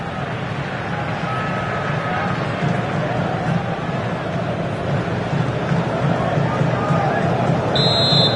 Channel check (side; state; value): both; identical; correlation 1.00